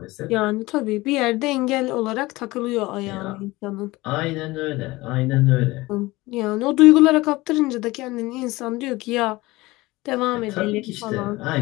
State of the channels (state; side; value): quieter; right; 20.4 dB